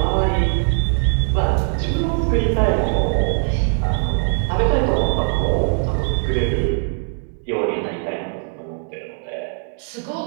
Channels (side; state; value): left; silent; 58 dB below the other